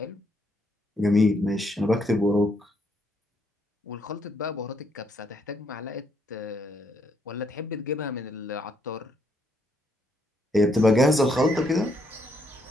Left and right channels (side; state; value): both; normal; correlation 0.74